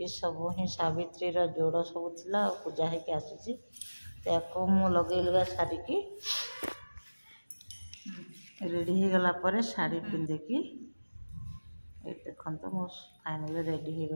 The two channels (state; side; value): inverted; both; correlation -1.00